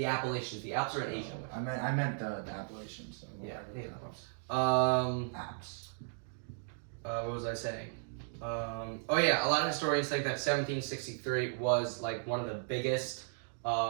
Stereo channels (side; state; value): left; silent; digital silence